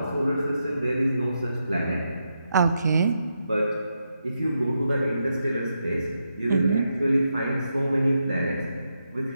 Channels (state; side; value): inverted; both; correlation -0.84